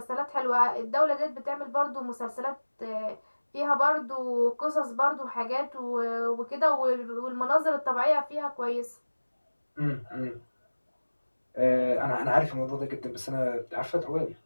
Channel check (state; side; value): inverted; both; correlation -1.00